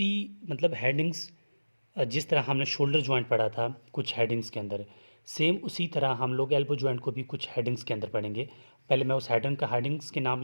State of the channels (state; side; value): inverted; both; correlation -1.00